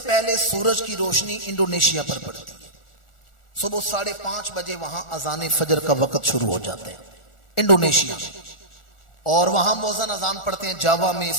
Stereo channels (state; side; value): late; right; 1.4 ms